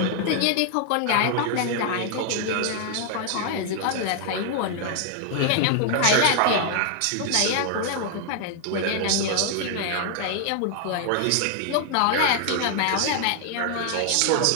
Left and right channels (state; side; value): different; both; correlation 0.00